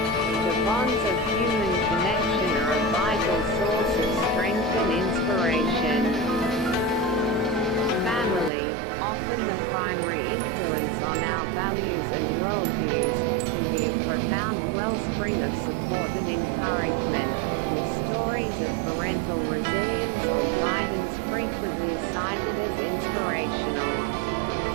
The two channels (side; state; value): left; drops out; at 8.5 s